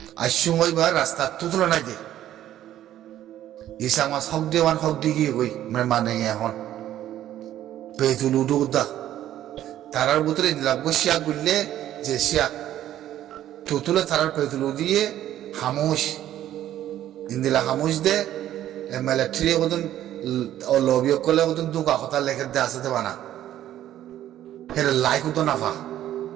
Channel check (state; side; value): quieter; left; 12.3 dB